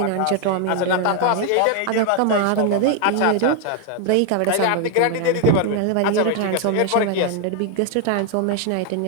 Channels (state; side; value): different; both; correlation 0.01